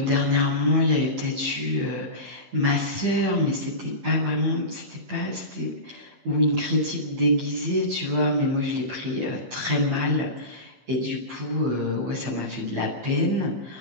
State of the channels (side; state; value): left; late; 15 ms